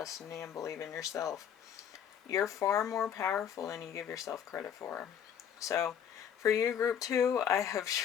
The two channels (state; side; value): quieter; right; 8.7 dB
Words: and believe in yourself. You're far more powerful than you give yourself credit for. So, for you, group 2, I have